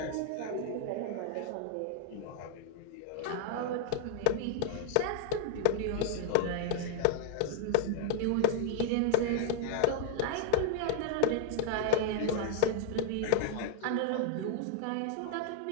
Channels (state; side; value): different; both; correlation 0.00